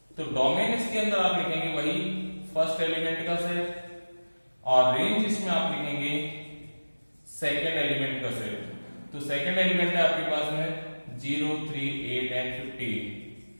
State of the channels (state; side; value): inverted; both; correlation -1.00